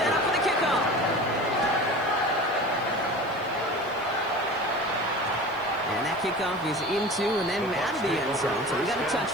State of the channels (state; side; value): noise; right; hiss, 27 dB below the sound